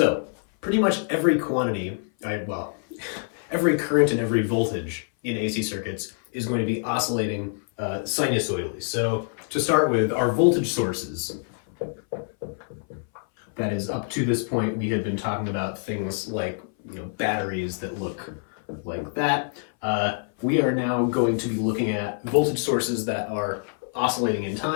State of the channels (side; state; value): right; silent; 59 dB below the other